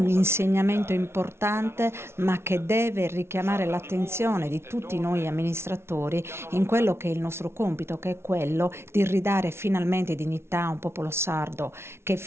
insegnamento importante, ma che deve richiamare l'attenzione di tutti noi amministratori in quello che è il nostro compito, che è quello di ridare finalmente dignità a un popolo sardo che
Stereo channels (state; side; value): late; left; 0.12 ms